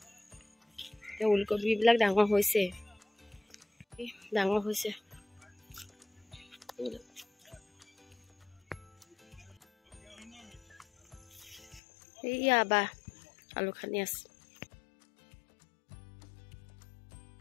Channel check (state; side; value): drops out; right; at 11.8 s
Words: এতিয়া ওলকবিবিলাক ডাঙৰ হৈছে এইয়া বা আলু খানি আছে